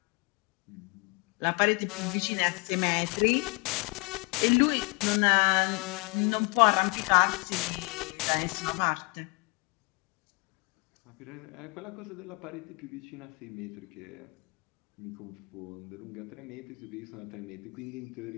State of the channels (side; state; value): right; quieter; 30.8 dB